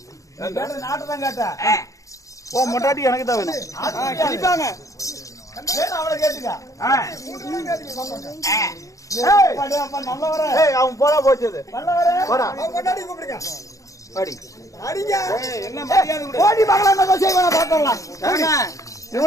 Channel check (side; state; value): right; late; 0.16 ms